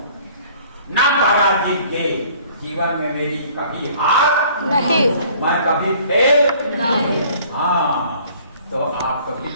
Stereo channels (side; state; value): both; inverted; correlation -0.54